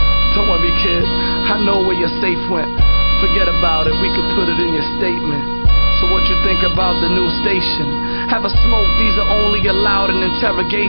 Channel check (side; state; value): both; inverted; correlation -1.00